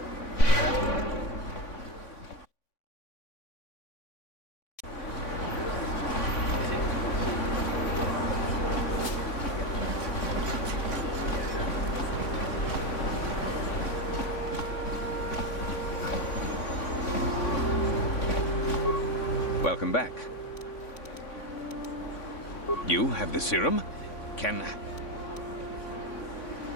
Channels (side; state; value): right; late; 3.5 ms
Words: Welcome back. You have the serum? Can...